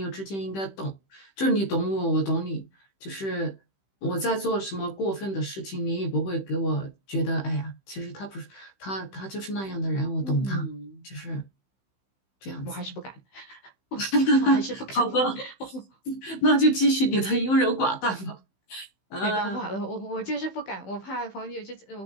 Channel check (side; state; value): right; late; 15 ms